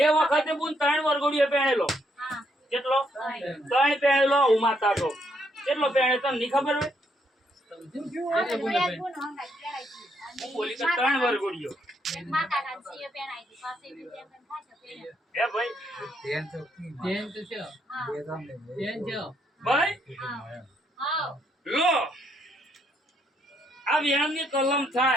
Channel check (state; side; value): normal; both; correlation 0.74